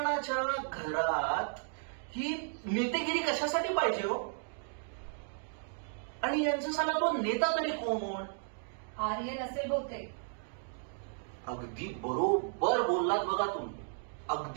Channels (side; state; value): left; silent; digital silence